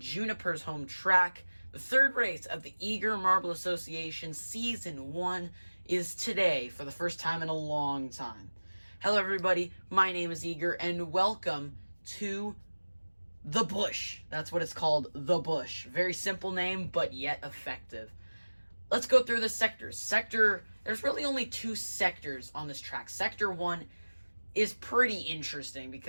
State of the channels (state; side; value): inverted; both; correlation -1.00